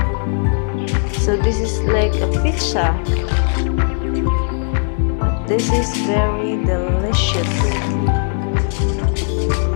So this is like a pizza. But this is very delicious.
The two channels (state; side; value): silent; right; 65 dB below the other